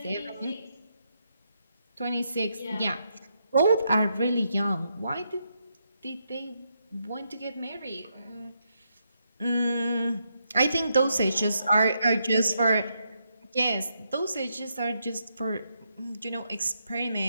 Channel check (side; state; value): both; inverted; correlation -0.80